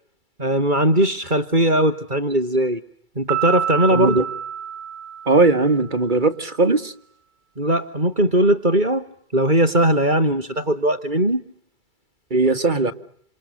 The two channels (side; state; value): left; late; 2.3 ms